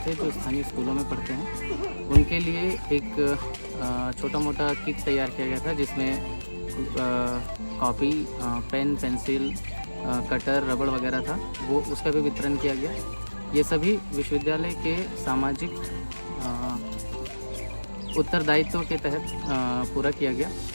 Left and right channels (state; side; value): inverted; both; correlation -1.00